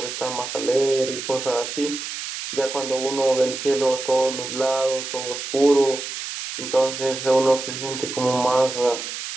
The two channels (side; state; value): right; noise; hiss, 7 dB below the sound